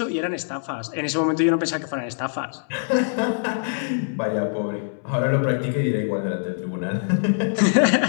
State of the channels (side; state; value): right; silent; digital silence